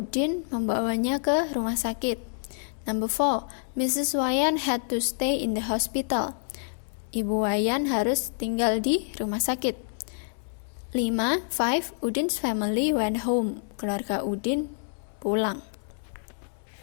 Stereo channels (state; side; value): silent; right; 60 dB below the other